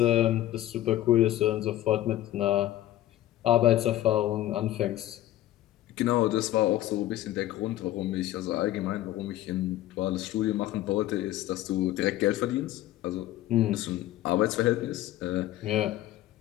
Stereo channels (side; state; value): right; quieter; 14.3 dB